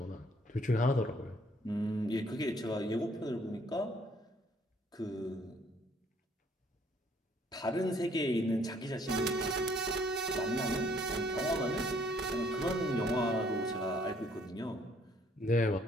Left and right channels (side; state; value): both; normal; correlation 0.63